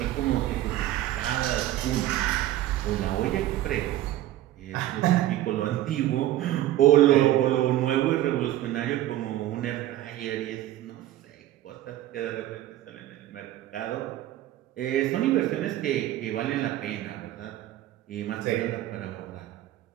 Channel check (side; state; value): left; quieter; 14.0 dB